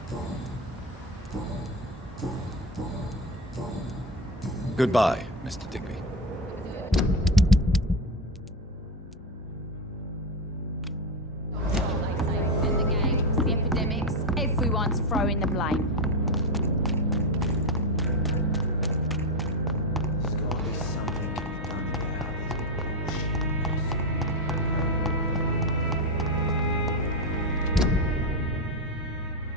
Goodbye, Mr. Digby. The gangs, the epidemics, everyone's throwing the blame.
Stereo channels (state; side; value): normal; both; correlation 0.13